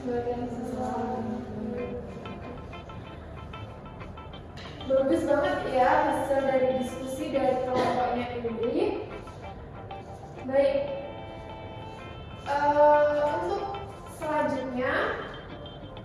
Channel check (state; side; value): identical; both; correlation 1.00